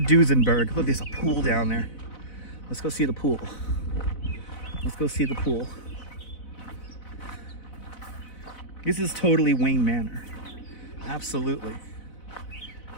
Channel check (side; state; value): right; late; 4.0 ms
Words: Look, there's a pool down there. Let's go see the pool. Let's go see the pool. This is totally Wayne Manor. Absolutely.